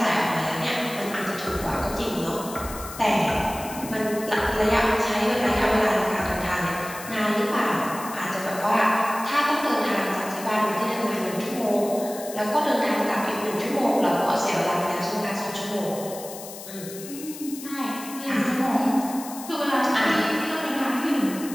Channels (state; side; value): noise; left; hiss, 13 dB below the sound